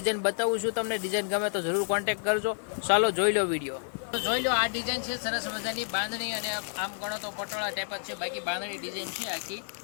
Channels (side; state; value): right; silent; 58 dB below the other